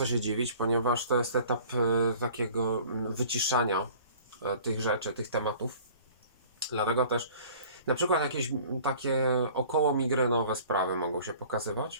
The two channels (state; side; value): inverted; both; correlation -0.48